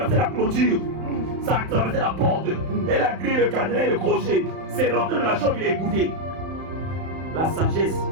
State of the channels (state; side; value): late; left; 31 ms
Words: la clôture. Ça a traversé la porte. Et la grille, le cadenas et le crochet. C'est rentré dans la chambre, il a écouté. La sagesse,